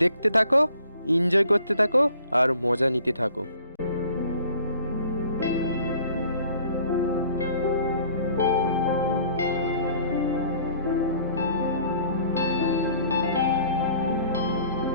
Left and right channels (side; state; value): both; inverted; correlation -0.54